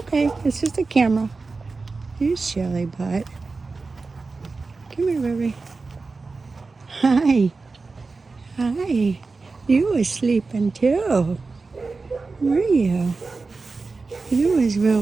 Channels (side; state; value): left; quieter; 4.0 dB